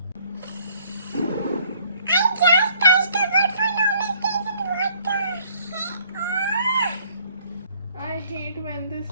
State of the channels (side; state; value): both; inverted; correlation -0.61